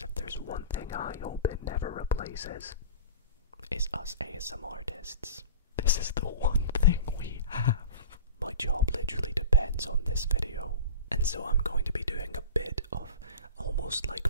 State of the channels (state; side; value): inverted; both; correlation -0.34